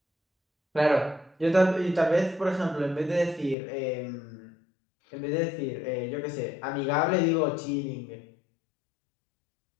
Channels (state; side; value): drops out; right; at 3.6 s